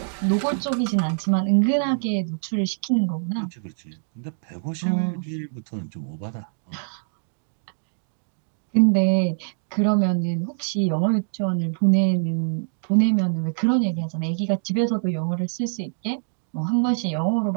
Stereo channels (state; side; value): silent; left; digital silence